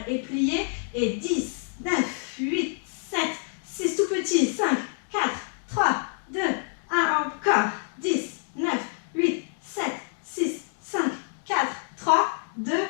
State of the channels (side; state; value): right; silent; 60 dB below the other